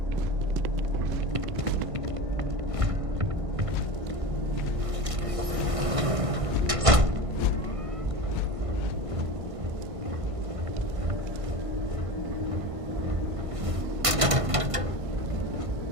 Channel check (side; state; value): left; late; 1.5 ms